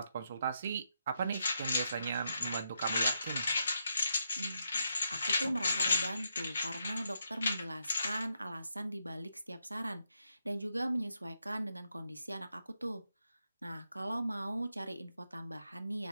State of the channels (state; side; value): inverted; both; correlation -0.81